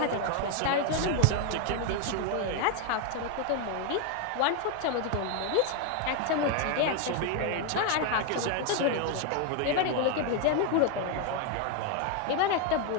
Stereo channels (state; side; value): different; both; correlation 0.01